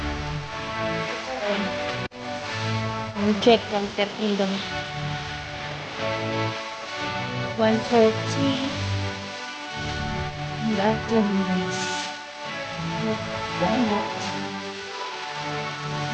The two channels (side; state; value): both; identical; correlation 1.00